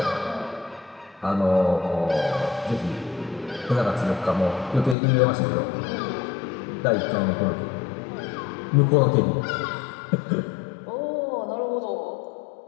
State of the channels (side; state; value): right; drops out; at 5.0 s